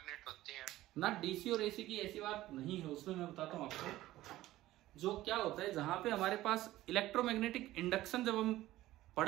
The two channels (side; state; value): left; quieter; 15.8 dB